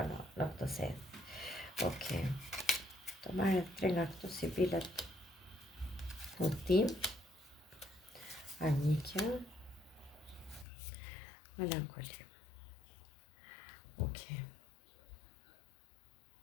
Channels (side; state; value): right; drops out; at 10.7 s